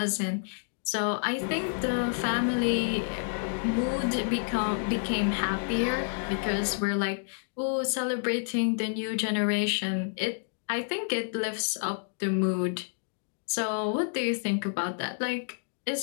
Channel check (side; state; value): right; silent; digital silence